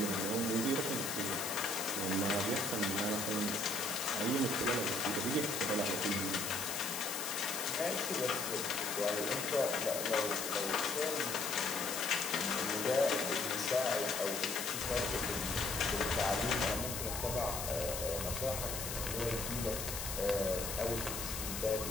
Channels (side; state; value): left; noise; hiss, 4 dB below the sound